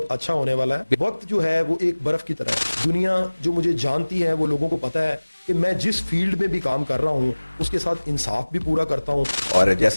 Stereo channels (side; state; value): both; inverted; correlation -1.00